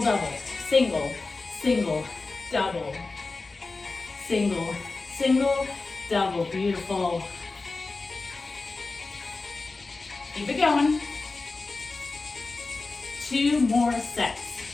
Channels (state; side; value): quieter; right; 3.7 dB